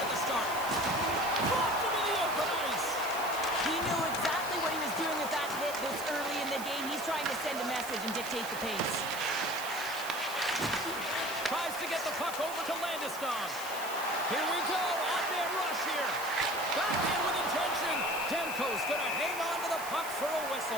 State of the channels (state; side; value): noise; right; hiss, 11 dB below the sound